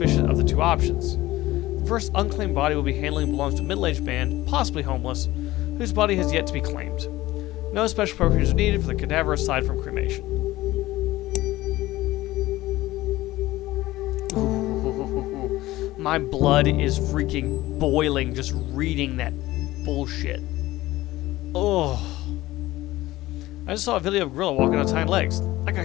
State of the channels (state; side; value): quieter; right; 17.3 dB